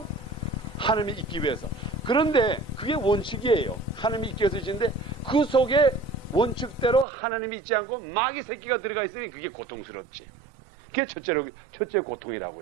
하나님이 있기 위해서. 그런데 그게 원칙이에요. 하나님이 있기 위해서 지은데 그 속에 원칙대로 하나님이 있지 않고 마귀 새끼가 들어가 있으니 그게 고통스럽지. 그게 첫째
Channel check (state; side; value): drops out; left; at 7.1 s